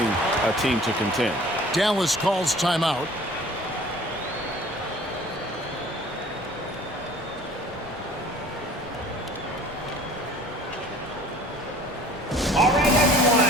a team to contend. Dallas calls timeout. All right, everyone,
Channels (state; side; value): normal; both; correlation 0.49